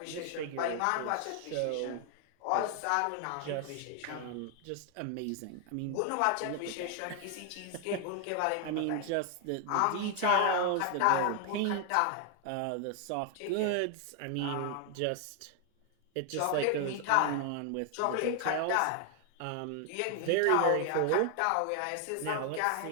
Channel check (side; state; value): both; different; correlation 0.00